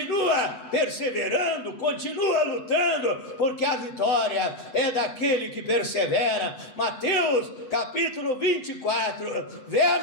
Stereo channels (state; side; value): late; right; 8.1 ms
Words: perseverando, continua lutando, porque a vitória é daquele que persevera. Mateus capítulo 24,